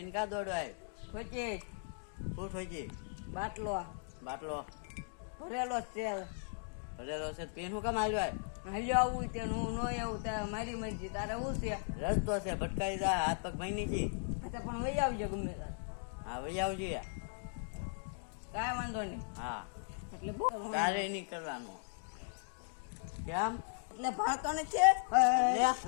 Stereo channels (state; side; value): silent; right; digital silence